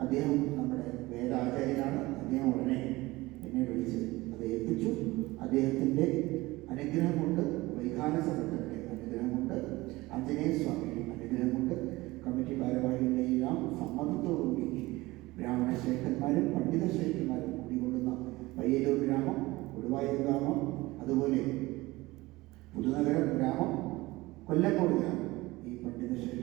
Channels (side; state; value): left; quieter; 20.2 dB